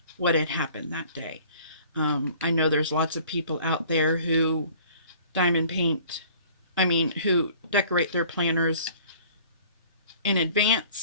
what had happened that day. I know there's lots of people out there who who decorate their planners in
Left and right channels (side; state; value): both; inverted; correlation -0.51